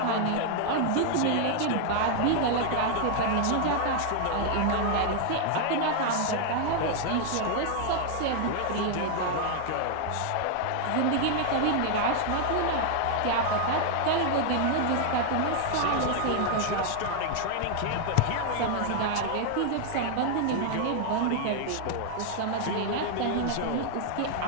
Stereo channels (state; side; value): different; both; correlation 0.00